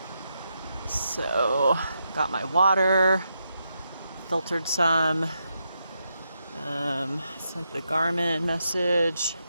So, got my water, filtered some, sent the Garmin message,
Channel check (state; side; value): inverted; both; correlation -0.83